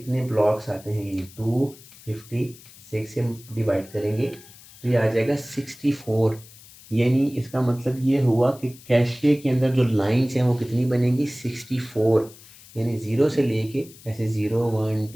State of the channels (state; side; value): noise; left; hiss, 21 dB below the sound